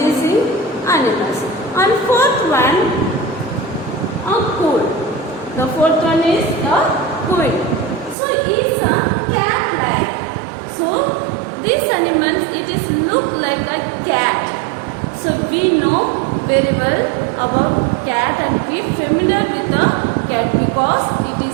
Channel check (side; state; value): left; drops out; at 8.2 s